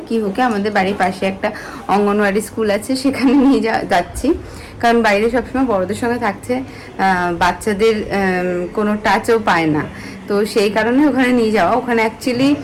কিহুকে আমাদের বাড়ির পাশে একটা অঙ্গনওয়াড়ি স্কুল আছে, সেখানে নিয়ে যাচ্ছি। কারণ বাইরে সবসময় বড়দের সঙ্গে থাকছে, বাচ্চাদের কোনো টাচও পায় না। তো সেই কারণে ওখানে নিয়ে যাওয়া। ওখানে অ্যাকচুয়ালি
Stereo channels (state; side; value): identical; both; correlation 1.00